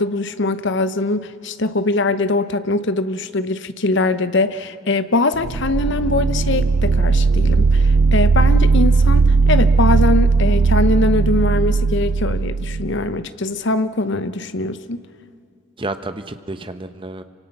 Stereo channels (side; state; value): both; normal; correlation 0.58